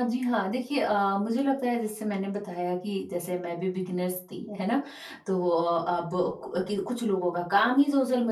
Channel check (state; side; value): identical; both; correlation 1.00